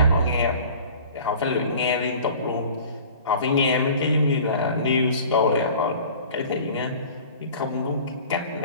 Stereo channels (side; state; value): both; inverted; correlation -0.44